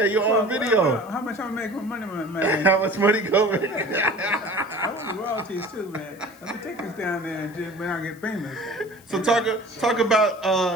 you're on video. How much I'm making money, man? How much money going? I want the royalties too, man. Let me take this down there and just when I get famous. So talk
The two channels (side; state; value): left; noise; hiss, 26 dB below the sound